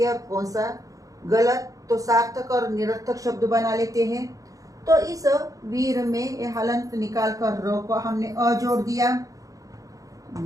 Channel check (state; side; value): late; left; 0.17 ms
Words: है और कौन सा गलत। तो सार्थक और निरर्थक शब्द बना लेते हैं। तो इस वीर में ये हलंत निकाल कर रो को हमने अ जोड़ दिया,